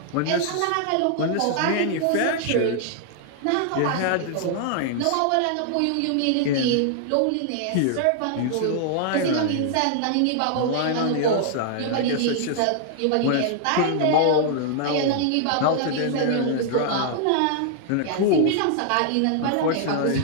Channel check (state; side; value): different; both; correlation -0.01